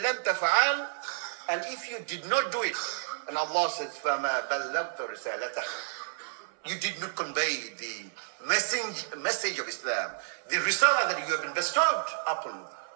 لَمْ تَفْعَلْ, and if you did not do it, and Allah says, فَمَا بَلَّغْتَ رِسَالَتَهُ, you did not convey the message of Islam, the risalah that you have been bestowed upon.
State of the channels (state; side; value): silent; left; 56 dB below the other